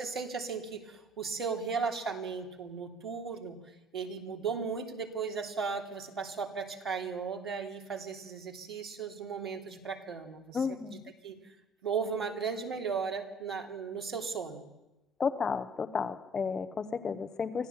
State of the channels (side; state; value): both; normal; correlation 0.51